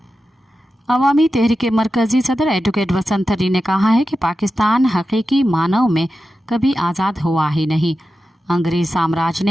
अवामी तहरीक के मरकजी सदर एडवोकेट वसंत तरी ने कहा है कि पाकिस्तान हकीकी मानव में कभी आज़ाद हुआ ही नहीं। अंग्रेज साम्राज्य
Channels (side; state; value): both; normal; correlation 0.92